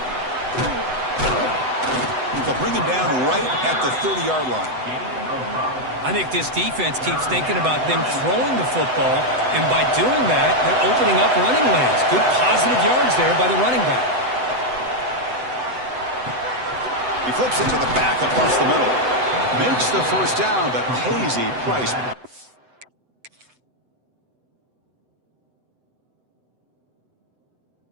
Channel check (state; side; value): late; left; 7.9 ms